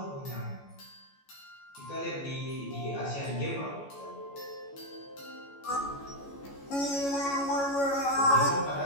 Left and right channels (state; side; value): late; right; 14 ms